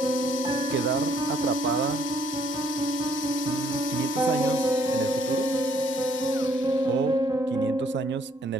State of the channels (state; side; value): normal; both; correlation 0.66